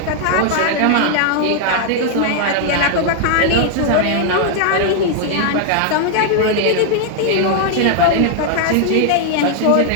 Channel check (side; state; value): both; different; correlation 0.00